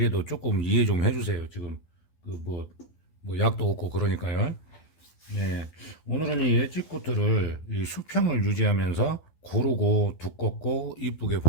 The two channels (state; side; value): late; right; 12 ms